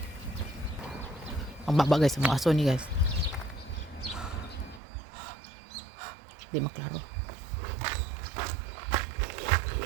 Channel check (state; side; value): drops out; left; at 4.8 s